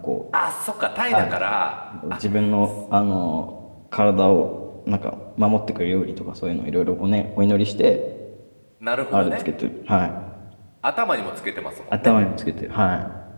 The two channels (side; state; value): both; inverted; correlation -1.00